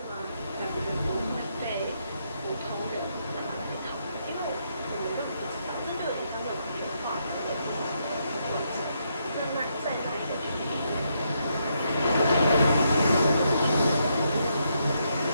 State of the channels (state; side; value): inverted; both; correlation -0.78